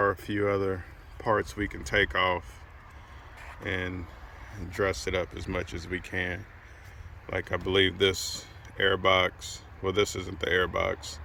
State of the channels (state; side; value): identical; both; correlation 1.00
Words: a few other parts we can take off and dress it up as much as we can. Like I believe this air box, well, this isn't the air box,